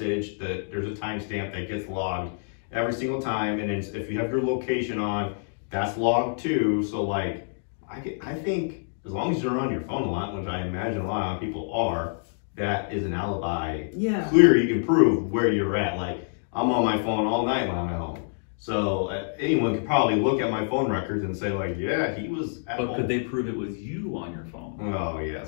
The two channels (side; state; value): right; silent; digital silence